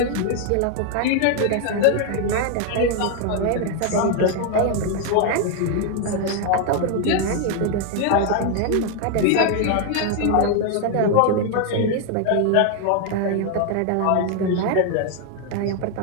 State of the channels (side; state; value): both; different; correlation 0.00